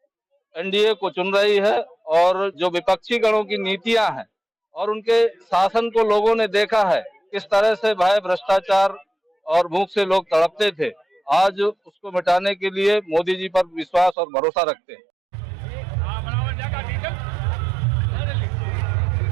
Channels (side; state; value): left; drops out; at 14.2 s